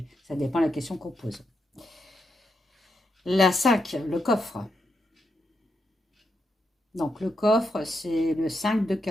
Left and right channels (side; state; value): both; normal; correlation 0.83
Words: ça dépend de la question qu'on pose. La 5, le coffre. Donc le coffre, c'est le 5 de